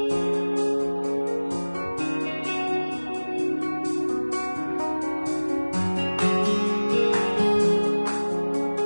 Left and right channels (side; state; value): both; inverted; correlation -1.00